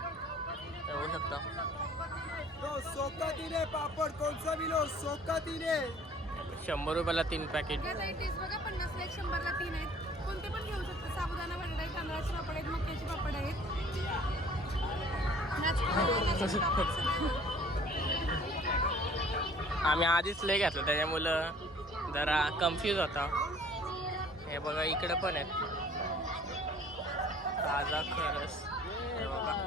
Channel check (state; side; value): normal; both; correlation 0.52